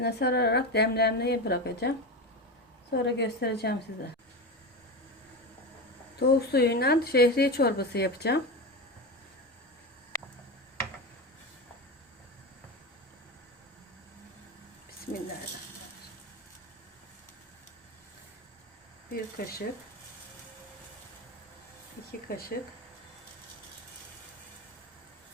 sararak demlemeye bırakacağım. Sonra göstereceğim size. Tavuk suyuyla şehriye çorbası yapacağım. Bismillahirrahmanirrahim. Bir kaşık, 2 kaşık,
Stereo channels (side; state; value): both; normal; correlation 0.21